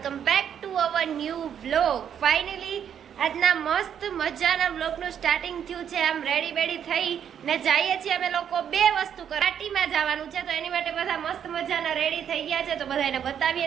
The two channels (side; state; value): left; quieter; 8.7 dB